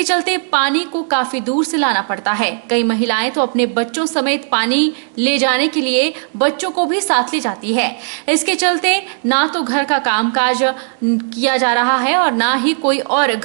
चलते पानी को काफी दूर से लाना पड़ता है। कई महिलाएं तो अपने बच्चों समेत पानी ले जाने के लिए बच्चों को भी साथ ले जाती है। इसके चलते ना तो घर का कामकाज किया जा रहा है और ना ही कोई और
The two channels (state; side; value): silent; left; 66 dB below the other